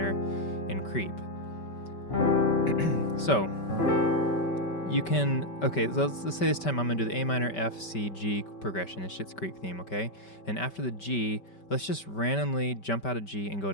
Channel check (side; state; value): right; late; 5.2 ms